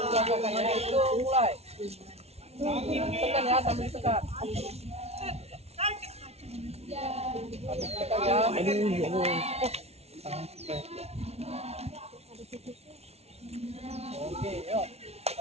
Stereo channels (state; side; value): late; left; 0.31 ms